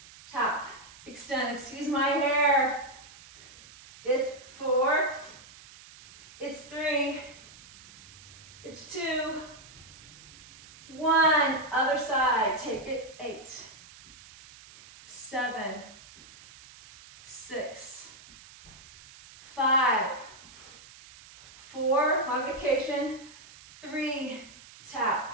tap, extend. Excuse my hair. It's 4, it's 3, it's 2, 1. Other side, take it. 8, 7, 6, 5, 4, modification, 3, tap,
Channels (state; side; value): noise; right; hiss, 20 dB below the sound